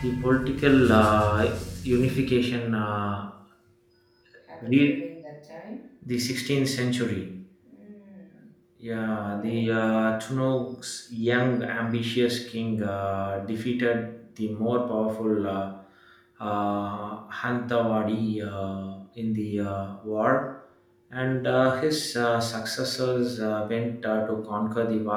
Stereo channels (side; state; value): both; identical; correlation 1.00